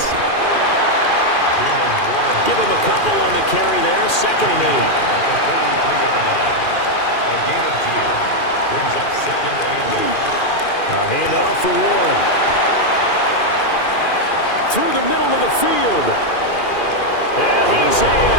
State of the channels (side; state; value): right; late; 2.4 ms